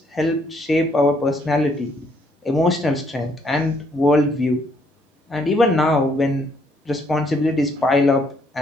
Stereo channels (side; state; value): both; normal; correlation 0.69